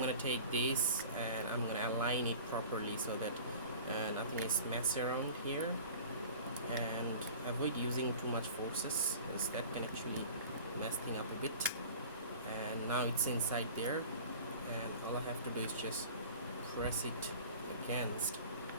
gonna take this and I'm gonna align it properly so that nothing is messed around here, and avoid using too much forces, because that can actually mess things up a bit. And now it's inside there, and all I have to do is just press it against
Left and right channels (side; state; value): both; inverted; correlation -0.42